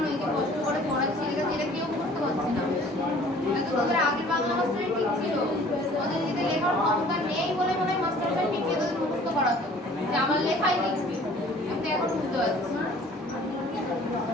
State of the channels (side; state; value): both; normal; correlation 0.51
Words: এই যে কষ্ট করে পড়াচ্ছি এটা কেউ বুঝতে পারছে না এটা তো তোদের আগের বাংলা মাস্টারই ঠিক ছিল ওদের যদি লেখার ক্ষমতা নেই বলে মনে হয় মাস্টারটা পিটিয়ে তোদের মুখস্থ করাতো যে আমার লেখাই লিখবি আমি তো এখন বুঝতে পারছি